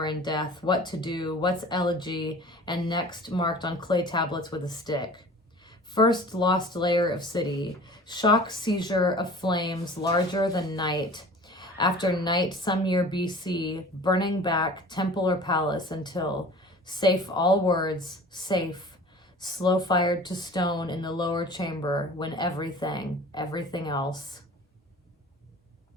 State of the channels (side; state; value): both; normal; correlation 0.43